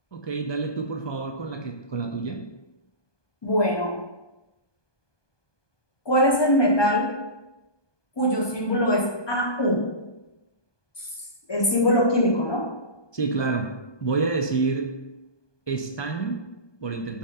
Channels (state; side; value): late; right; 1.2 ms